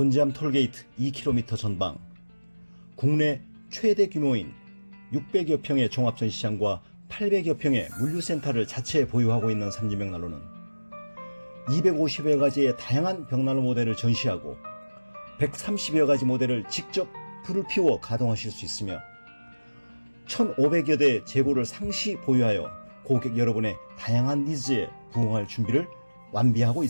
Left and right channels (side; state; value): both; inverted; correlation -1.00